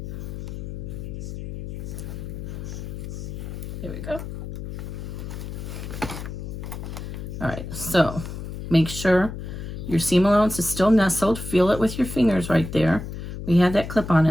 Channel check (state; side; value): noise; left; hum, 8 dB below the sound